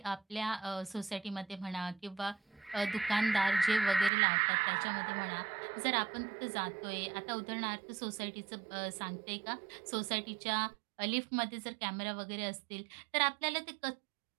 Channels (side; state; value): left; drops out; at 4.1 s